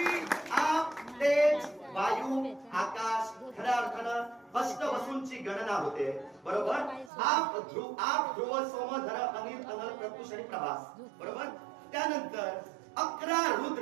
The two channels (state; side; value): drops out; left; at 7.1 s